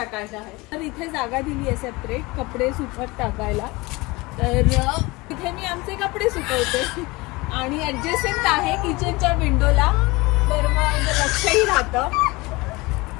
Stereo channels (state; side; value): quieter; right; 23.2 dB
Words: आहे. तर इथे जागा दिली आहे सेपरेट कपडे सुकत टाकायला. तर इथे मी आमचे कपडे सुकवते आणि ऍडजस्टमेंट आहे किचनच्या विंडोला, तर मग लक्षही राहतं.